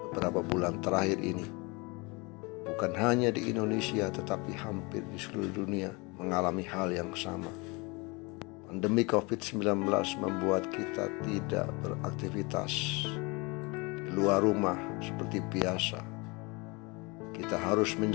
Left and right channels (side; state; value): right; quieter; 27.5 dB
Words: beberapa bulan terakhir ini. Bukan hanya di Indonesia, tetapi hampir di seluruh dunia mengalami hal yang sama. Pandemi COVID-19 membuat kita tidak beraktivitas di luar rumah seperti biasa. Kita harus